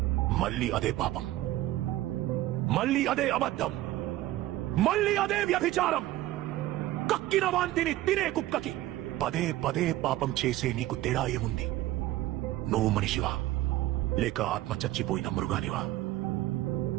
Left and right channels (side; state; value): left; quieter; 15.8 dB